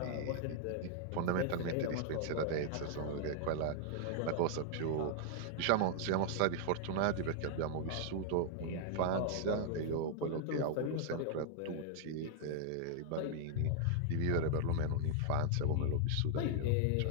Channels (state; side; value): different; both; correlation 0.00